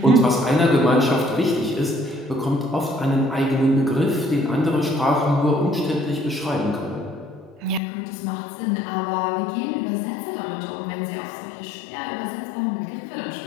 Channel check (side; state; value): right; drops out; at 7.8 s